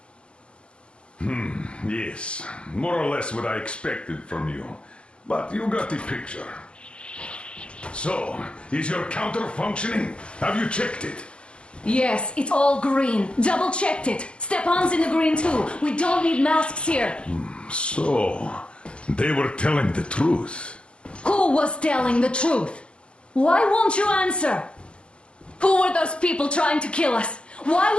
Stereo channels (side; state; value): right; late; 0.058 ms